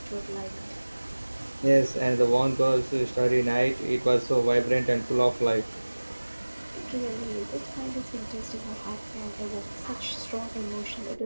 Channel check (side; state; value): both; inverted; correlation -1.00